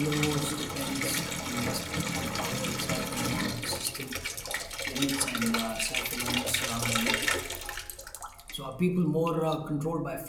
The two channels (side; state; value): both; identical; correlation 1.00